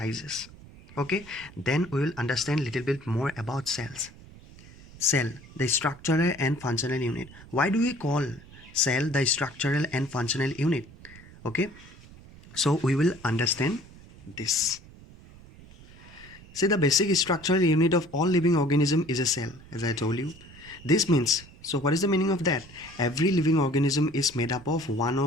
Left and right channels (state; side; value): noise; right; rumble, 20 dB below the sound